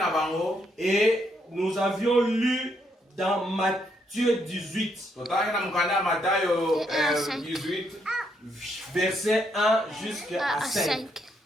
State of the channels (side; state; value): both; normal; correlation 0.75